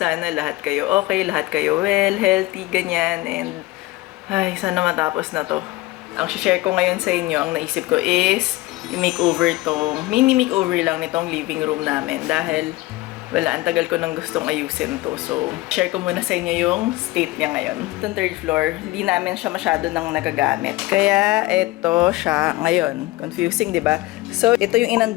lahat kayo okay, lahat kayo well, healthy, ganyan. And, ay, sana matapos na to. Ang share ko ngayon sa inyo, ang naisip ko is i-makeover tong, mini makeover lang nitong living room namin dahil wala, ang tagal ko nang gustong ayusin to. So, share ko muna sa inyo yung state niya ngayon. Itong third floor, hindi namin siya masyado nang nagagamit. Kaya, ito siya ngayon. Confusing, di ba? So, ito yung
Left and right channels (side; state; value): right; quieter; 19.2 dB